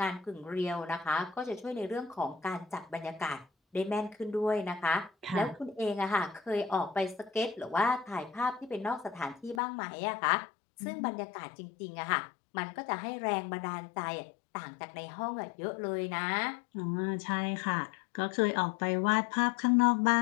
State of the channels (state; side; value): drops out; right; at 9.6 s